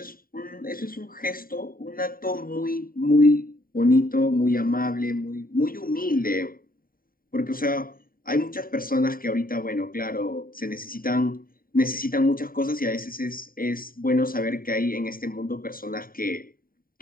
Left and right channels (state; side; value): late; right; 0.42 ms